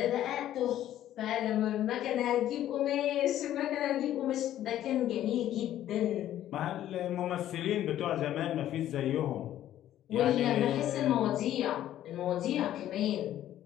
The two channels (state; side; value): quieter; right; 12.3 dB